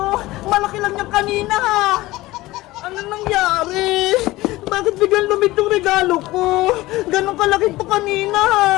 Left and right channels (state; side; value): quieter; right; 18.5 dB